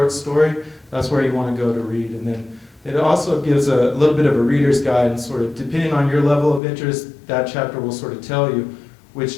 story, that's where you want to go to read. And then it also gives a little bit of a reader's guide, and sort of depending on your level of interest, that chapter will sort of tell you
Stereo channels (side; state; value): right; drops out; at 6.6 s